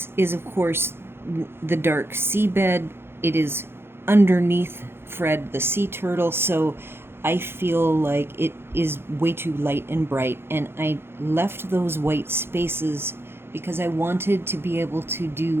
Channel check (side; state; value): left; late; 0.11 ms